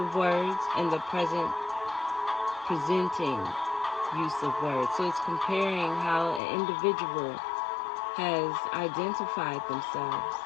words and the present presenting use of words. So it's comparing how an individual has identified themselves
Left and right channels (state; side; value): drops out; right; at 6.4 s